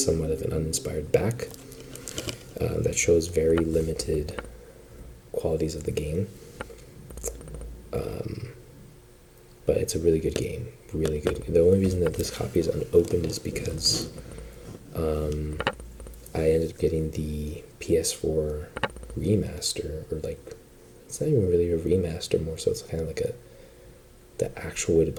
of an uninspired back that shows very limited qualities of the game. But it's a really good game, really good. The only reason that this copy is unopened is because I ended up getting the PS4 remaster, or like, it's not even really a remaster, more so it's kind of like the actual way to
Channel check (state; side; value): identical; both; correlation 1.00